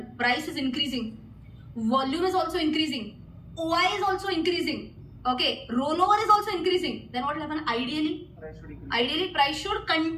price is increasing, volume is also increasing, OI is also increasing. Okay, rollover is also increasing. Then what will happen? Ideally, price should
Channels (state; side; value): identical; both; correlation 1.00